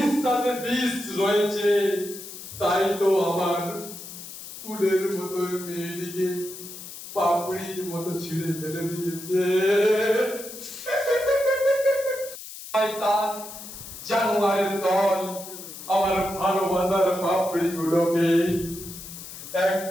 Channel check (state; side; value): noise; left; hiss, 12 dB below the sound